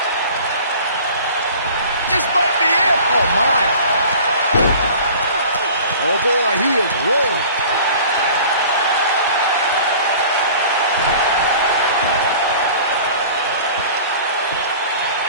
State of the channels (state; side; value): inverted; both; correlation -0.44